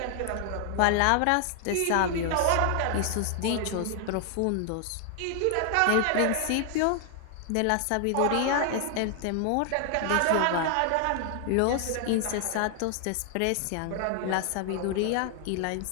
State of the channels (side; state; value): both; different; correlation 0.00